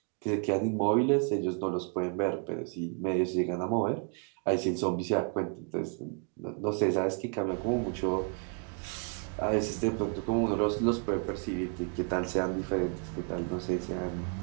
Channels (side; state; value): left; quieter; 38.5 dB